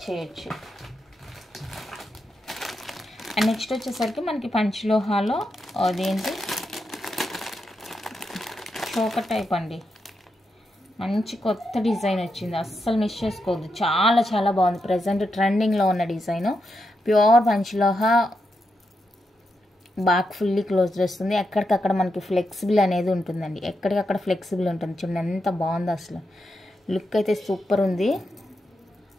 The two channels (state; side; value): normal; both; correlation 0.85